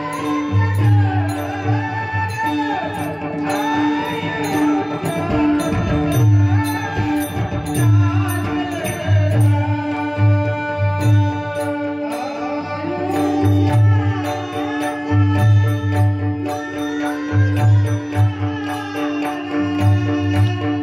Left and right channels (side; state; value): both; identical; correlation 1.00